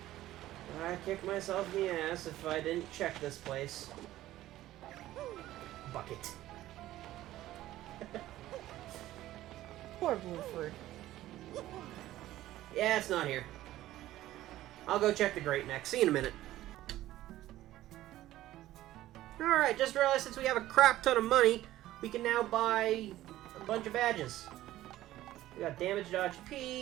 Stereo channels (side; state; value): left; quieter; 14.8 dB